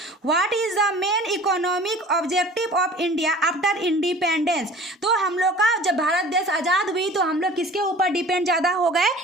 what is the main economic objective of India after independence? तो हम लोग का जब भारत देश आजाद हुई तो हम लोग किसके ऊपर डिपेंड ज्यादा हो गए?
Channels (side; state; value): both; normal; correlation 0.44